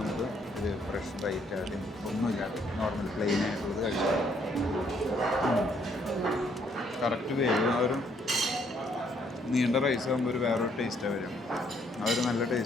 ഒരു ഫ്രഷ് റൈറ്റ് ആദ്യം ഒന്നുമില്ലാതെ നോർമൽ പ്ലെയിൻ ആയിട്ടുള്ളത് കഴിച്ചാൽ കറക്റ്റ് വേവ്. ആ ഒരു നീണ്ട റൈസ് ആകുമ്പോൾ ഒരു വേറൊരു ടേസ്റ്റാണ് വരും. ആ ഒരു നല്ല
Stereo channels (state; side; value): normal; both; correlation 0.68